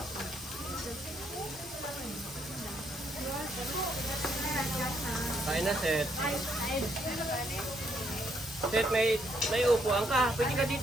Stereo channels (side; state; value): both; normal; correlation 0.74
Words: Kain na, Seth. Seth, may upuan ka. Pwede ka